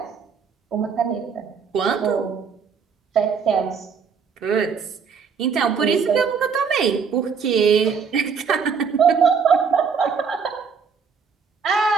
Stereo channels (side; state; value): left; quieter; 6.0 dB